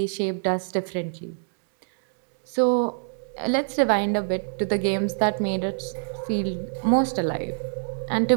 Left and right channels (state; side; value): silent; left; digital silence